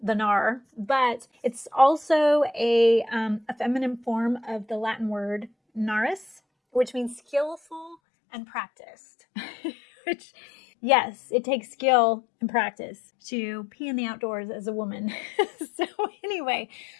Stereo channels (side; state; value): right; drops out; at 8.0 s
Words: the Gnar, but it's also a feminine form of the Latin word naris, which means skillful and practiced. Which, yes, it takes skill and practice to pee in the outdoors as a woman. So anyway,